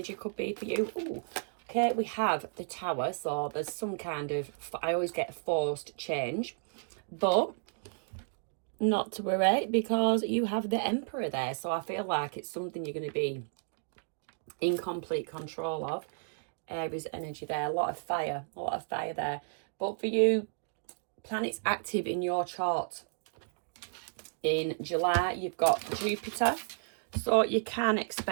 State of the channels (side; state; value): left; silent; digital silence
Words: could be for you. Ooh. Okay, we have the Tower, so there's some kind of, I always get forced change, but not to worry because you have the Emperor there. So I feel like it's something you're going to be in complete control of. Aries energy there, a lot of fire there. But for you, planets active in your chart in July, you've got Jupiter, so you can